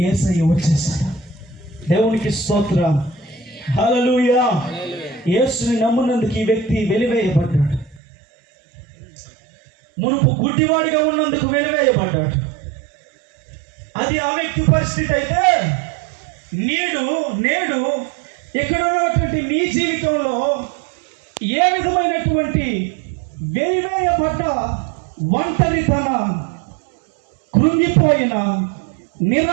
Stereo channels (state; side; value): drops out; left; at 8.0 s